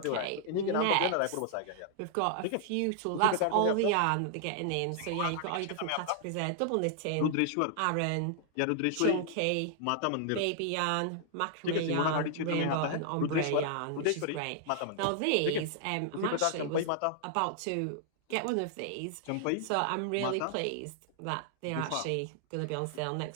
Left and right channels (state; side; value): different; both; correlation -0.01